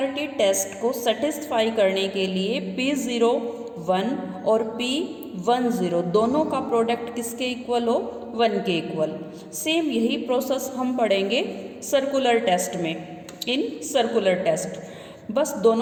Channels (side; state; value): both; identical; correlation 1.00